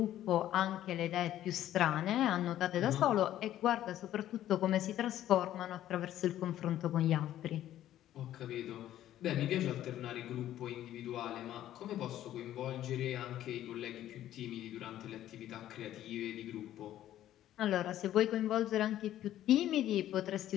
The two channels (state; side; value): quieter; right; 12.6 dB